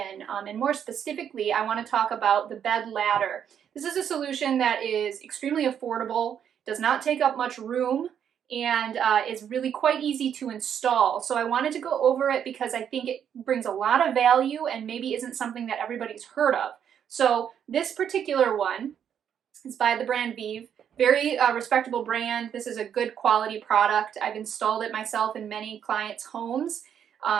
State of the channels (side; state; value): left; quieter; 8.7 dB